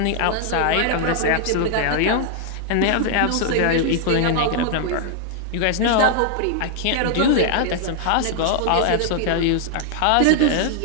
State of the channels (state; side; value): different; both; correlation 0.00